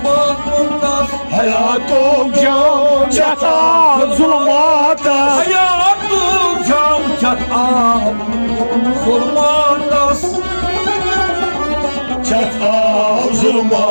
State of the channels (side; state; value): both; inverted; correlation -1.00